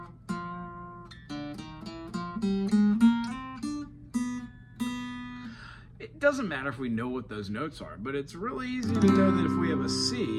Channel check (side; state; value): both; identical; correlation 1.00